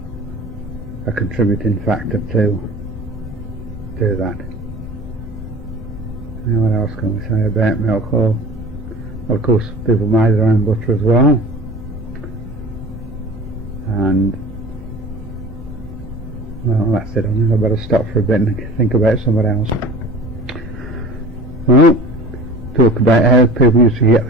a contributing factor to that. Now, what else can we say about milk? Well, of course, people made their own butter as well, and well, that's it. I think I better stop for a bit and think about something else. Well, talk about how people used to get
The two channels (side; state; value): both; normal; correlation 0.41